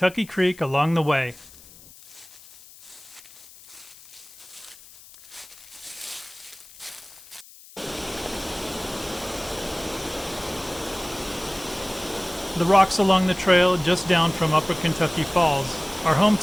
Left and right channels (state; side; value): noise; left; hiss, 21 dB below the sound